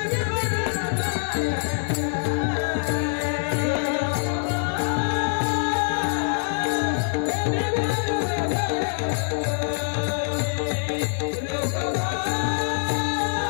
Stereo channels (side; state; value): right; silent; digital silence